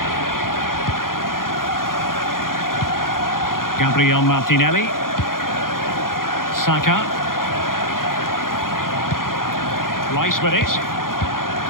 Gabriel Martinelli. Saka. Rice with it.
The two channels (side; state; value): right; late; 0.91 ms